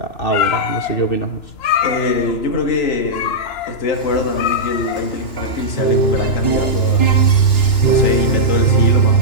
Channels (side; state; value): right; late; 2.9 ms